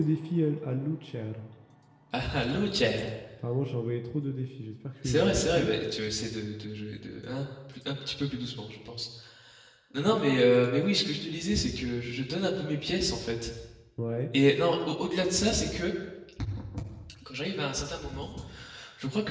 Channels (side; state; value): both; identical; correlation 1.00